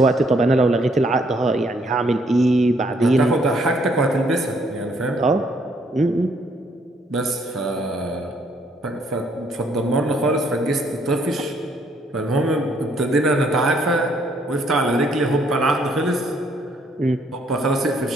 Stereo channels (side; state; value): both; normal; correlation 0.68